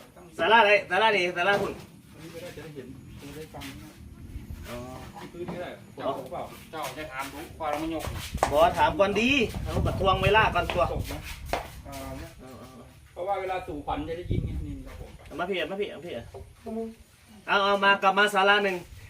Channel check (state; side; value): identical; both; correlation 1.00